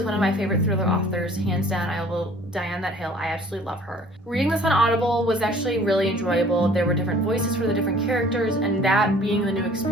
one of my favorite thriller authors, hands down. I will die on that hill. I absolutely love her. Reading this on Audible was actually really enjoyable. There were different voices for the different characters, and that being the new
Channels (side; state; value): both; normal; correlation 0.52